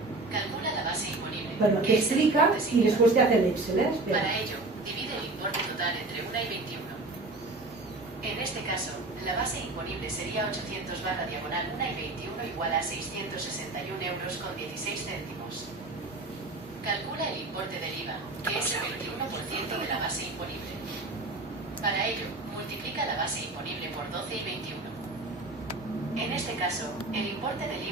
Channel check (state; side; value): quieter; left; 3.1 dB